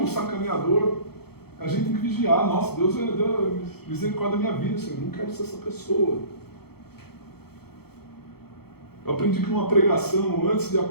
sacaneador. A gente tem que vigiar. Nossa, Deus deu misericórdia da minha vida, Senhor, eu não quero ser essa pessoa. Eu aprendi que numa pregação, antes de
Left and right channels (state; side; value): late; right; 0.96 ms